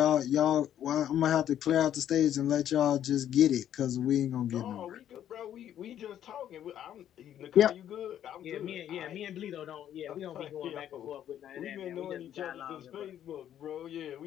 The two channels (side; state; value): right; quieter; 10.7 dB